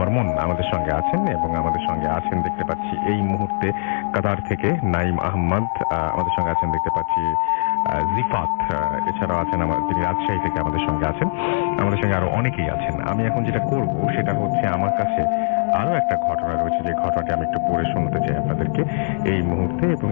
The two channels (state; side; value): silent; right; digital silence